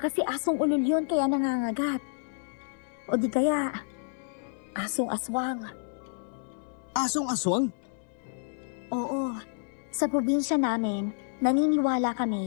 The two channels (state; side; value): silent; right; digital silence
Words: kasi asong ulol yun kaya nangangagat. O di kaya, asong aswang. Asong aswang? Oo, sa probinsya namin, naniniwala